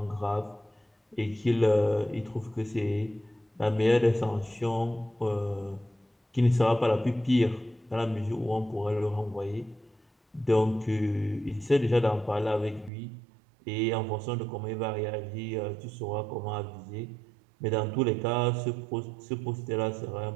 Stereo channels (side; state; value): left; drops out; at 12.9 s